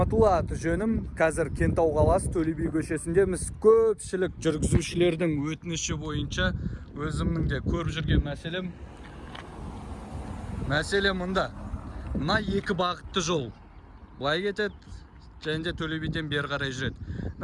аты жөнім. Қазір Кентау қаласы Төле би көшесіндеміз. Көпшілік жүргізушілердің өтініші бойынша өзімнің де көріп жүрген мәселе мұнда. Мына екі бағытты жол. Былай кетеді, және де Төле биден бері қарай жүреді.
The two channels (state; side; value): identical; both; correlation 1.00